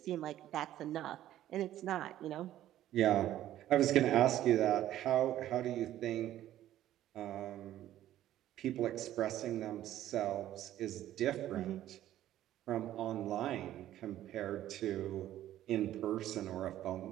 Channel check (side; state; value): left; quieter; 13.0 dB